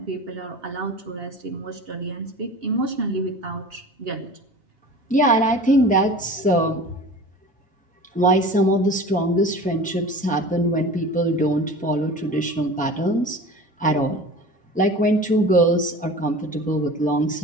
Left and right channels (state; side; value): normal; both; correlation 0.38